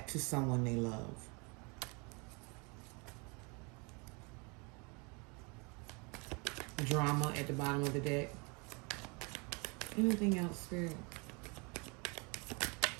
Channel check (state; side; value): quieter; left; 30.8 dB